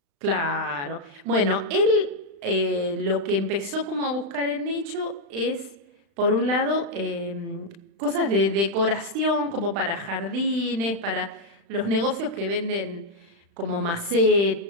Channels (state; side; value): late; left; 35 ms